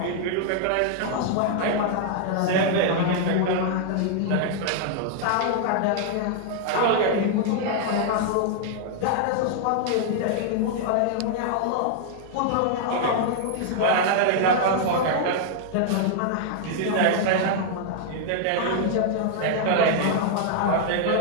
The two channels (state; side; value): different; both; correlation -0.01